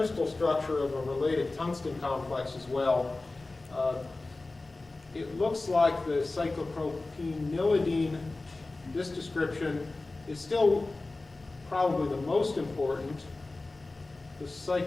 structure of a related tungsten complex as well. It looks like the cyclopropenylidine, this description, is still probably the most important. The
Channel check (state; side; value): quieter; right; 3.2 dB